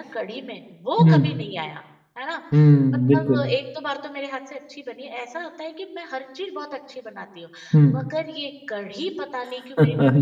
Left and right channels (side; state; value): both; identical; correlation 1.00